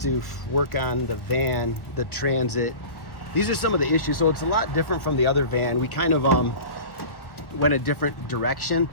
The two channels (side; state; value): right; late; 1.1 ms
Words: to work on the van, the Transit. These are some of the issues. So it's a lot different from the other van. We kind of went a different direction,